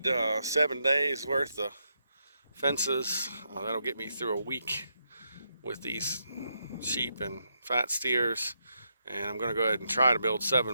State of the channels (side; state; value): both; inverted; correlation -0.81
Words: 7 days worth of fences. That'll get me through a week with these sheep and fat steers. And I'm going to go ahead and try to build